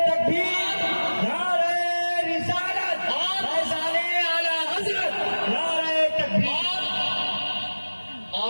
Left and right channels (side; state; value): both; inverted; correlation -1.00